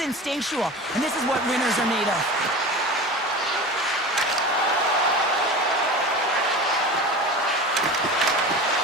instinctual, and this is what winners are made of.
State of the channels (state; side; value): normal; both; correlation 0.32